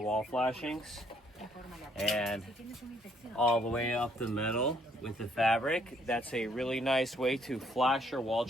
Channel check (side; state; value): both; normal; correlation 0.67